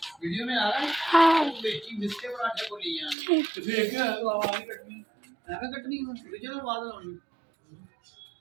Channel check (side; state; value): left; drops out; at 3.2 s